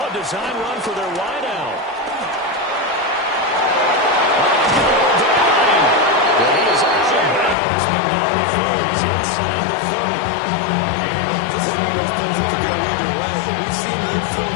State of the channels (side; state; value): right; drops out; at 7.6 s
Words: design run for their wideout. Well, he is out of bounds, but not before he's inside the 30. This is one of those plays that could go either way. We've seen the